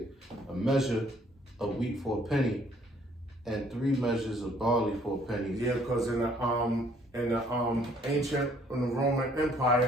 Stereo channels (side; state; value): both; normal; correlation 0.62